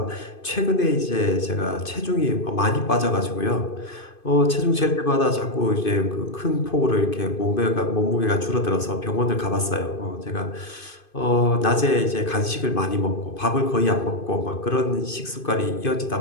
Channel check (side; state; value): right; late; 2.5 ms